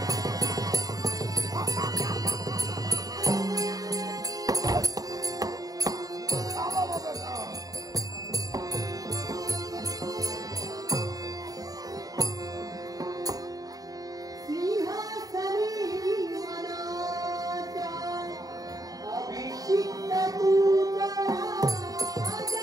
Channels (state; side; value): late; left; 0.18 ms